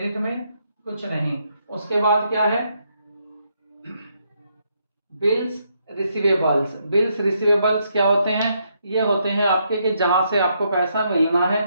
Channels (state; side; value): inverted; both; correlation -0.76